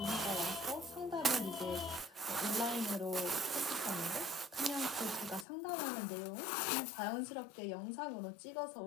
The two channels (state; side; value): drops out; right; at 5.5 s